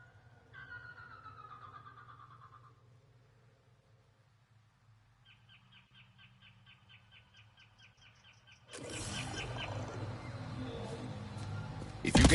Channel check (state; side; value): identical; both; correlation 1.00